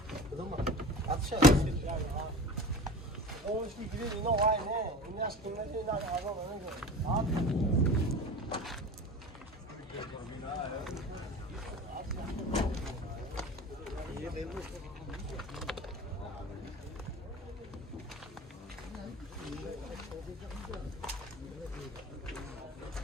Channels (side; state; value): both; normal; correlation 0.35